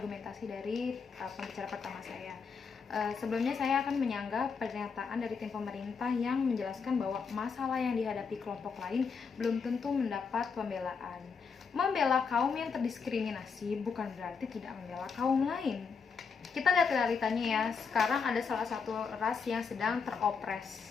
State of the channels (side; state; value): right; quieter; 5.6 dB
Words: dari pembicara pertama saya. Sebelumnya saya akan menyanggah pernyataan dari tim pemerintah yang menjelaskan bahwa masalah yang dihadapi kelompok lain belum tentu mendapat pembelaan. Membela kaum yang terdiskriminasi bukan berarti tidak membela kaum lain. Kita lihat realitanya ya, sekarang ada salah satu ras yang sedang